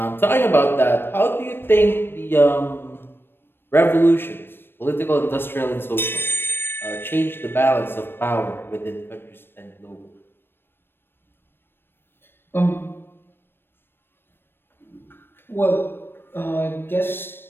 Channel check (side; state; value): right; late; 0.10 ms